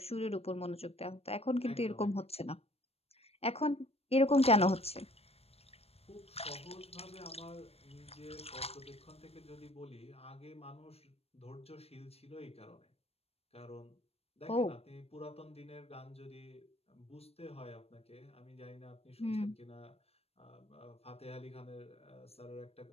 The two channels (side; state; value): right; late; 0.29 ms